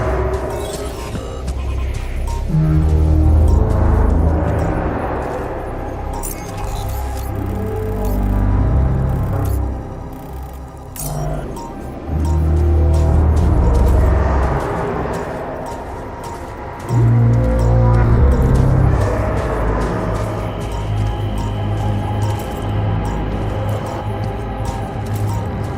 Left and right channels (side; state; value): both; identical; correlation 1.00